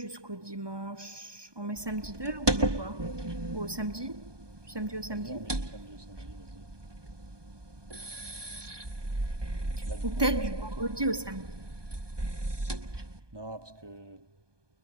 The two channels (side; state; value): left; late; 1.2 ms